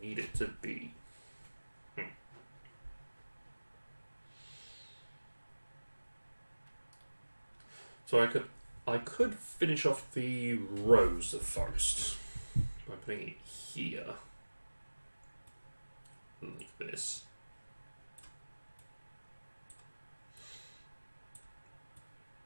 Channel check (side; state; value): both; inverted; correlation -1.00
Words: need it to be. So I could finish off the rows of forest by putting it here, like this.